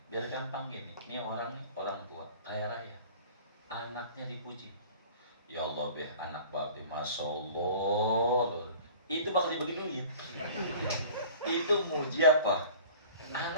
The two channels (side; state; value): both; inverted; correlation -0.44